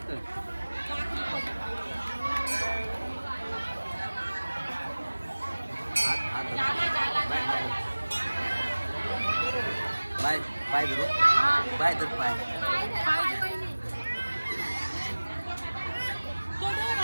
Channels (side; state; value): both; inverted; correlation -1.00